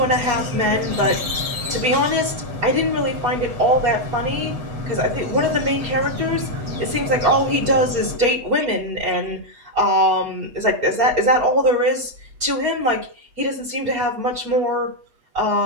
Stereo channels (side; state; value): left; late; 8.1 ms